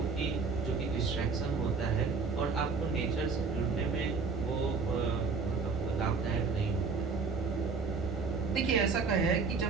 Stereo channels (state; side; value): quieter; left; 4.8 dB